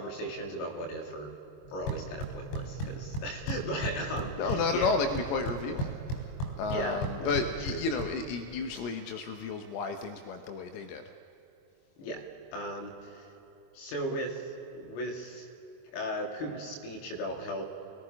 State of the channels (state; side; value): late; right; 22 ms